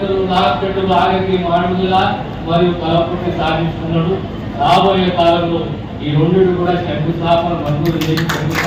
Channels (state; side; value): identical; both; correlation 1.00